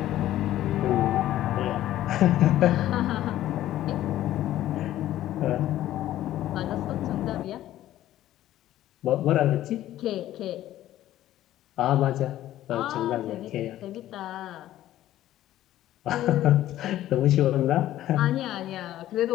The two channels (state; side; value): quieter; right; 13.5 dB